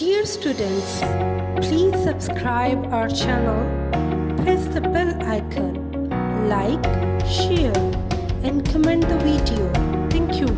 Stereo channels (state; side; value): identical; both; correlation 1.00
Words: students, please subscribe our channel, press the bell icon, like, share and comment the video. Thank you